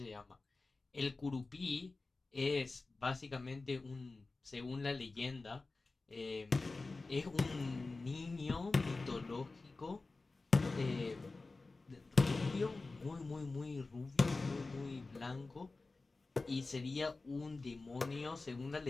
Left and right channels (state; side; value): quieter; right; 3.6 dB